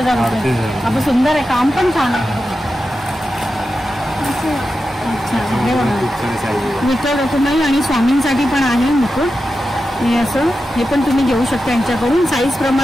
रुपये. आपण सुंदर आहे. काम पण छान आहे. अच्छा, हे बघा विठ्ठल रखुमाई आणि स्वामींसाठी पण आहे मुकुट. हे असं हे पण तुम्ही घेऊ शकता यांच्याकडून. साईज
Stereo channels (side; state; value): both; normal; correlation 0.91